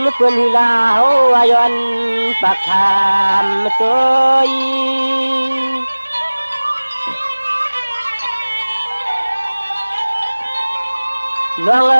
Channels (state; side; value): inverted; both; correlation -1.00